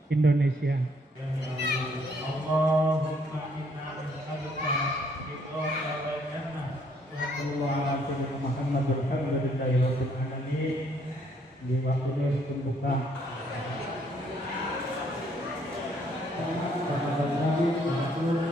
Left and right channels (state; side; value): normal; both; correlation 0.67